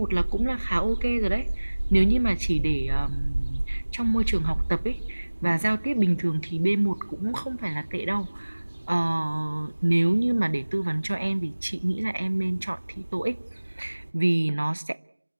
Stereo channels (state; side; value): inverted; both; correlation -1.00